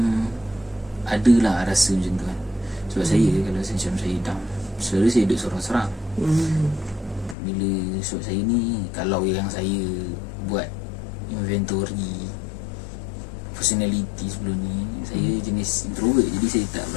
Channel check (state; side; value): drops out; right; at 7.4 s